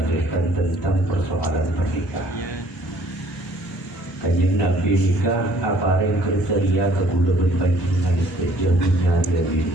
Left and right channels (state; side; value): normal; both; correlation 0.59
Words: tentang persoalan pernikahan. Kanjeng Nabi nikah apa yang kriteria kegula berpanjingan saja punya dia